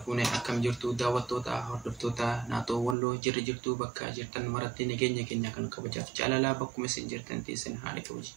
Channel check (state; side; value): drops out; left; at 3.0 s